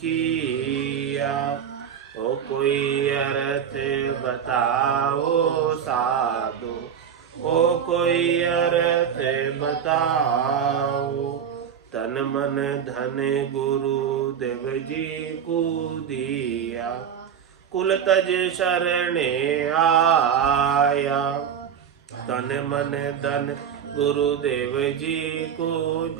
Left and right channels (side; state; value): left; quieter; 8.1 dB